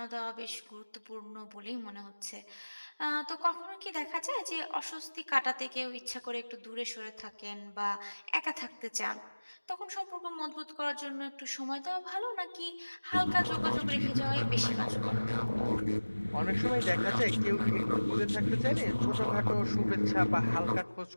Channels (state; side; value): inverted; both; correlation -1.00